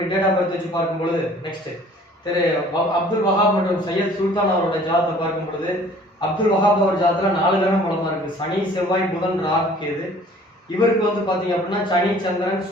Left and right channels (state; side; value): normal; both; correlation 0.52